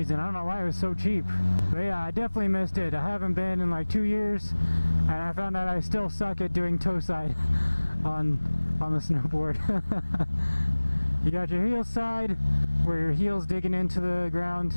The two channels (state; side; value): inverted; both; correlation -1.00